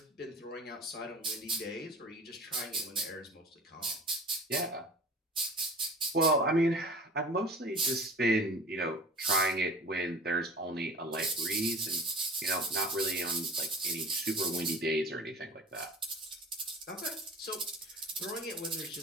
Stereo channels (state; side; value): normal; both; correlation 0.40